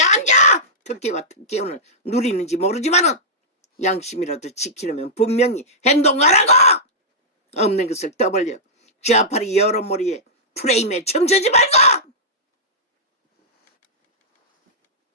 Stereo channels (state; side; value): normal; both; correlation -0.12